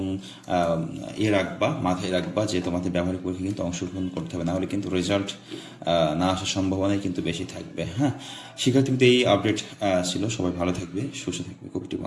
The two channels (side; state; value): both; identical; correlation 1.00